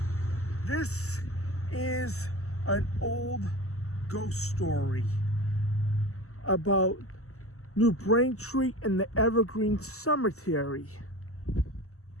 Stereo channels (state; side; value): late; right; 0.64 ms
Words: this is an old ghost story about New Braintree and the Evergreen Cemetery.